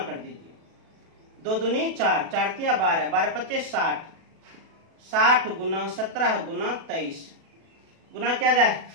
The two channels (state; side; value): late; left; 37 ms